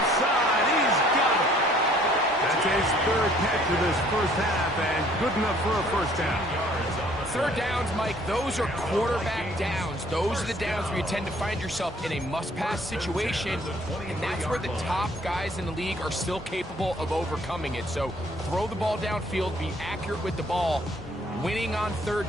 side. He's got it. That's his third catch of this first half, and good enough for a first down. Third downs, Mike, those are quarterback downs. Those are the downs where you tend to find yourself in a must-pass situation, and that's where the top guys in the league are still capable of overcoming it. So throw the ball downfield, be accurate with the ball. Winning on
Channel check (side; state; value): both; normal; correlation 0.59